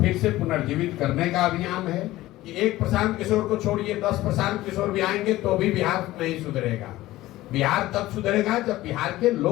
से पुनर्जीवित करने का अभियान है कि एक प्रशांत किशोर को छोड़िए 10 प्रशांत किशोर भी आएंगे तो भी बिहार नहीं सुधरेगा। बिहार तब सुधरेगा जब बिहार के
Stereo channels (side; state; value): right; quieter; 16.6 dB